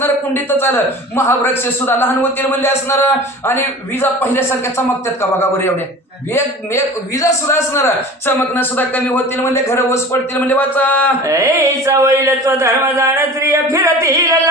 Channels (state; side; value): normal; both; correlation 0.38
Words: कुंडीतच आलं. महावृक्ष सुद्धा लहान होतील म्हणजे असणार. आणि विजा पहिल्यासारख्या चमकतात का बघा बरं एवढ्या. विजा सुद्धा असणार, चमकणं सुद्धा कमी होतील म्हणजे घर ओस पडतील म्हणजे. वाचा. वैलत्व धर्म जाण स्त्रिय फिरती